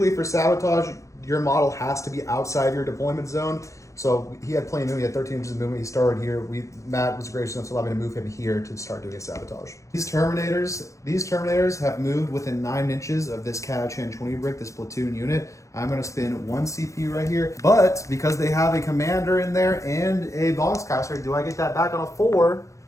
for sabotage, your model has to be outside your deployment zone. So he had plenty of movement. He had 13 inches of movement. He started here. Matt was gracious enough to allow me to move him here to start doing a sabotage. These Terminators have moved within 9 inches of this Catachan 20 brick, this platoon unit. I'm going to spin 1 CP right here. But because they have a commander in there and a boxcaster, do I get that back on a 4?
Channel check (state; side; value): late; right; 0.15 ms